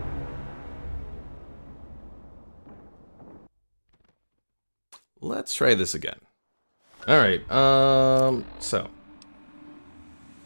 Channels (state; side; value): inverted; both; correlation -1.00